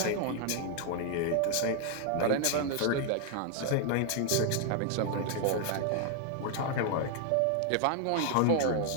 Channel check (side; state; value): both; different; correlation 0.00